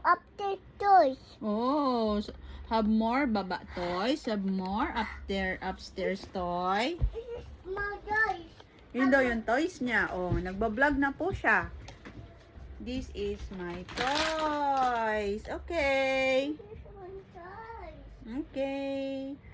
update toys. Oh, have more baba toys. Have more upstairs toy. This is my toys. Yun daw yung toys niya. Oh, nagbablog na po siya. This is my toys. Okay. This is my toys. Okay.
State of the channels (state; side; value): identical; both; correlation 1.00